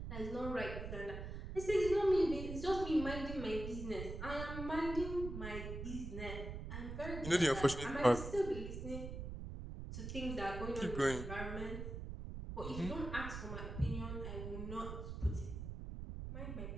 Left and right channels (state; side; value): noise; right; rumble, 7 dB below the sound